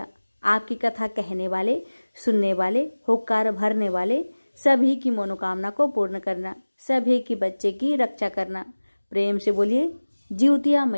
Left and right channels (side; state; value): both; inverted; correlation -1.00